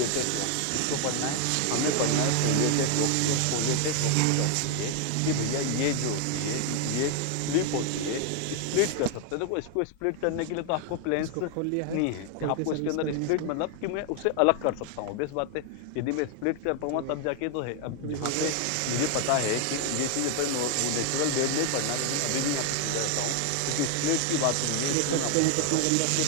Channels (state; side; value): different; both; correlation 0.00